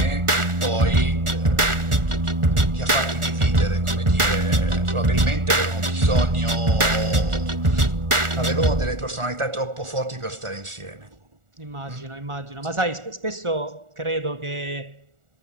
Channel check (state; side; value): late; left; 1.4 ms